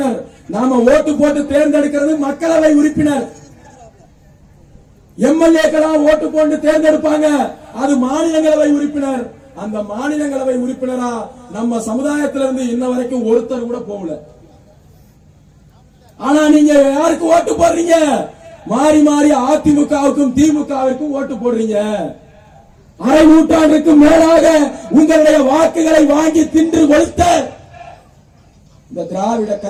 நாம ஓட்டு போட்டு தேர்ந்தெடுக்கிறது மக்களவை உறுப்பினர். எம்எல்ஏக்களா ஓட்டு போட்டு தேர்ந்தெடுப்பாங்க, அது மாநிலங்களவை உறுப்பினர். அந்த மாநிலங்களவை உறுப்பினரா நம்ம சமுதாயத்திலிருந்து இன்ன வரைக்கும் ஒருத்தர் கூட போகல. ஆனா நீங்க யாருக்கு ஓட்டு போடுறீங்க? மாறி மாறி அதிமுகவுக்கும் திமுகவிற்கும் ஓட்டு போடுறீங்க. அரை நூற்றாண்டுக்கு மேலாக உங்களுடைய வாக்குகளை வாங்கி தின்று கொளுத்த இந்த திராவிட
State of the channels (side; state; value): both; identical; correlation 1.00